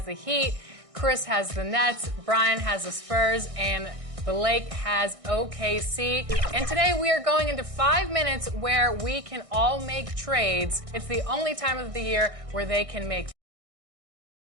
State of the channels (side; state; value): left; late; 1.6 ms